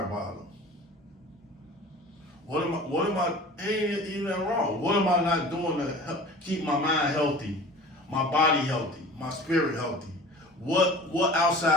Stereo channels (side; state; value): both; normal; correlation 0.41